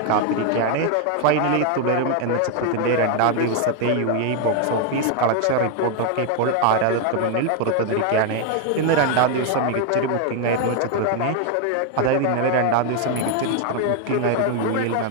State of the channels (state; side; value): different; both; correlation 0.00